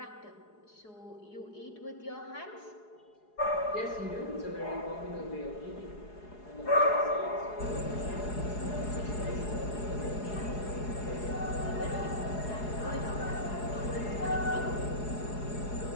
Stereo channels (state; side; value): late; right; 4.8 ms